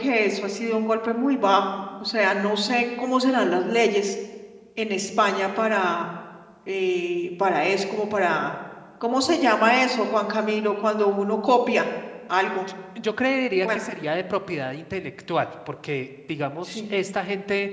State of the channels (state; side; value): identical; both; correlation 1.00